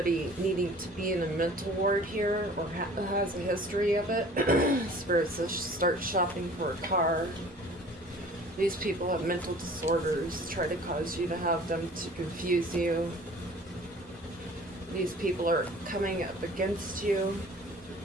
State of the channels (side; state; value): both; normal; correlation 0.48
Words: needing to be in a mental ward here, or has a history of it. Spirit says start shopping for a car. These people have mental disorders, try to cause you to have them to confuse you. These people are coming up against you